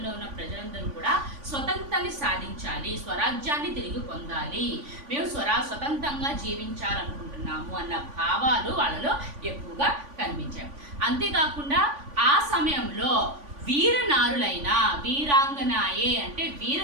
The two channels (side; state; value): left; late; 3.5 ms